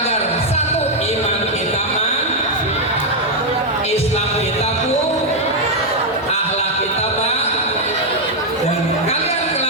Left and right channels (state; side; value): normal; both; correlation 0.00